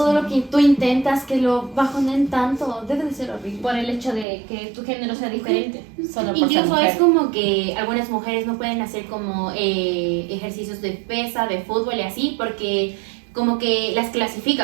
lo que tú intentas, que lo bajonen tanto, debe de ser horrible. Por el hecho de que tu género sea diferente. Solo por ser Incluso mujer. es como que algunas mujeres no pueden hacer como ejercicios de pesa, de fútbol y así, porque como que las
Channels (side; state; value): left; drops out; at 4.2 s